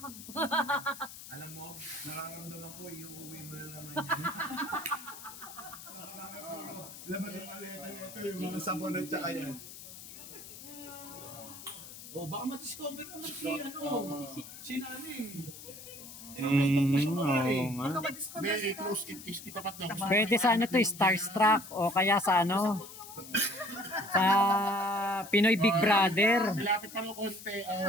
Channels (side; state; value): left; noise; hiss, 14 dB below the sound